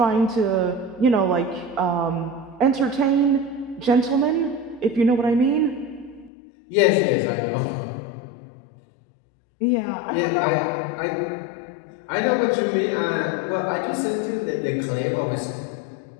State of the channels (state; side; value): drops out; right; at 6.3 s